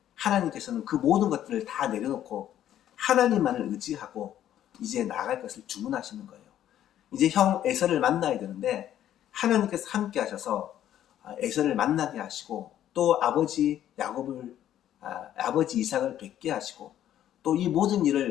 하나님께서는 그 모든 것들을 다 내려놓고 하나님만을 의지하고 이제 나아갈 것을 주문하시는 거예요. 이제 형 에서를 만나야 되는데 하나님께서 함께 하셔서 에서를 만나게 하시고 또 아버지 야곱을 아버지 이삭을 뵙게 하시고 또 이 모든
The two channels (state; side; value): quieter; right; 11.4 dB